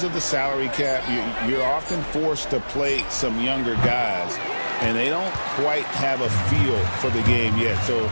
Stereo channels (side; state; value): both; inverted; correlation -1.00